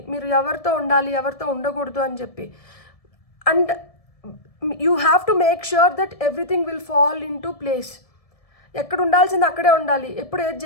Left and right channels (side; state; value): right; late; 1.7 ms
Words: మీరు ఎవరితో ఉండాలి, ఎవరితో ఉండకూడదు అని చెప్పి. And you have to make sure that everything will fall in to place. ఎక్కడ ఉండాల్సింది అక్కడే ఉండాలి. ఎప్పుడు ఏది